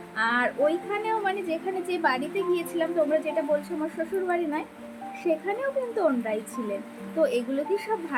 আর ওইখানেও যেখানে যে বাড়িতে গিয়েছিলাম তোমরা যেটা বলছো আমার শ্বশুর বাড়ি নয়, সেখানেও কিন্তু ওনরাই ছিলেন। তো এগুলো কি সব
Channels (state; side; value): identical; both; correlation 1.00